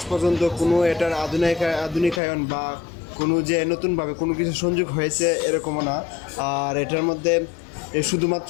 পর্যন্ত কোনো এটার আধুনিকায়ন বা কোনো যে নতুনভাবে কোনো কিছু সংযোগ হয়েছে এরকমও না। আর এটার মধ্যে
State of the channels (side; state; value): right; drops out; at 2.2 s